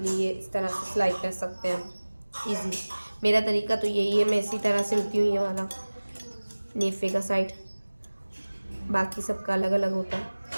लिए इस तरह से सिलाई कर सकते हैं हम इजी। मेरा तरीका तो यही है, मैं इसी तरह सिलती हूँ ये वाला नेफे का साइड, बाकी सबका अलग अलग होता है।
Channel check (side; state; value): both; inverted; correlation -1.00